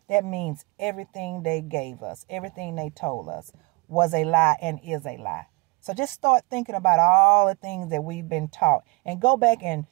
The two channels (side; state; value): left; quieter; 26.5 dB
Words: that means everything they gave us, everything they told us was a lie and is a lie. So just start thinking about all the things that we've been taught and go back and